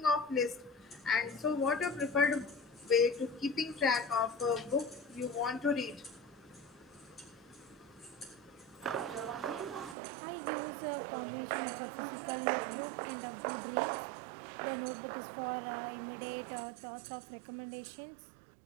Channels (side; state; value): left; drops out; at 10.0 s